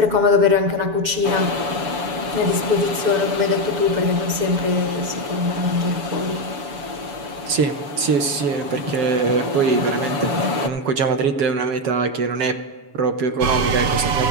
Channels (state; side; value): late; left; 7.1 ms